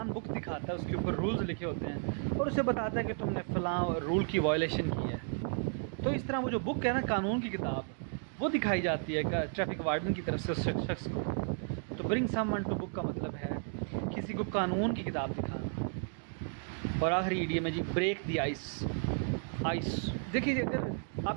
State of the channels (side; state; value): left; silent; 55 dB below the other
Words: बुक दिखाता है, उसके ऊपर रूल्स लिखे होते हैं और उसे बताता है कि तुमने फ़लाँ रूल की वायलेशन की है। तो इस तरह वो जो बुक है ना, कानून की किताब, वो दिखाई जाती है ट्रैफिक वार्डन की तरफ से उस शख्स को। तो ब्रिंग समवन टू बुक का मतलब है किसी को कानून की किताब दिखाना। और आखिरी इडियम है जी ब्रेक द आइस। देखिए अगर